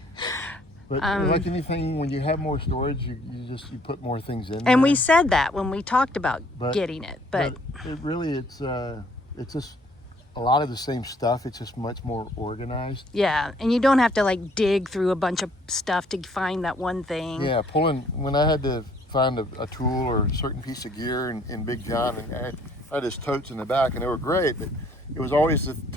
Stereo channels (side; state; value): both; normal; correlation 0.61